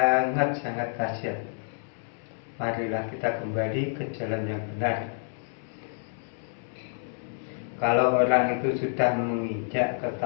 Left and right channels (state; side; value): silent; right; digital silence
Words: kasihan. Marilah kita kembali ke jalan yang benar. Kalau orang itu sudah menginjak ke